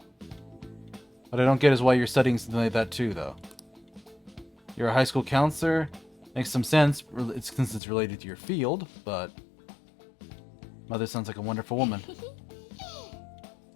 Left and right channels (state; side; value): drops out; right; at 7.8 s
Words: What I don't get is why you're studying something like that too, though. You're a high school counselor. Makes some sense since it's related to your field, but... Mother sounds like a wonderful woman.